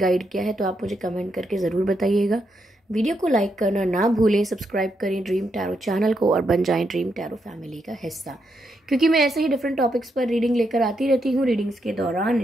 किया है तो आप मुझे कमेंट करके ज़रूर बताइएगा। वीडियो को लाइक करना ना भूलें, सब्सक्राइब करें ड्रीम टैरो चैनल को और बन जाएं ड्रीम टैरो फैमिली का हिस्सा, क्योंकि मैं ऐसे ही डिफरेंट टॉपिक्स पर रीडिंग लेकर आती रहती हूँ। रीडिंग्स के दौरान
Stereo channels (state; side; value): normal; both; correlation 0.81